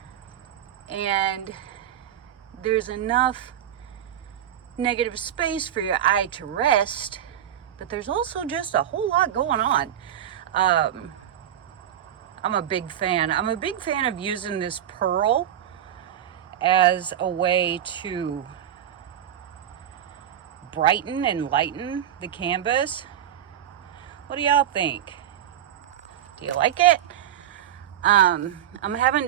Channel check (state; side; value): quieter; left; 10.6 dB